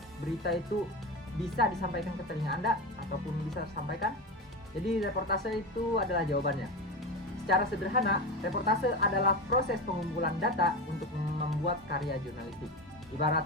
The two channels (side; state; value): both; normal; correlation 0.20